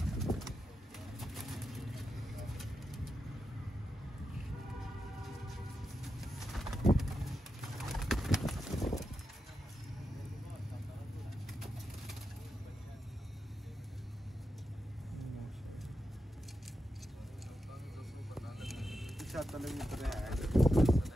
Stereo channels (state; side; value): normal; both; correlation 0.88